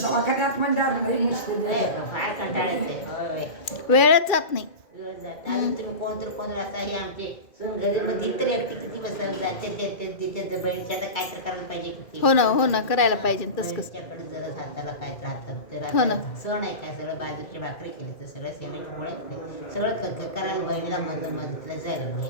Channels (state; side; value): late; right; 2.4 ms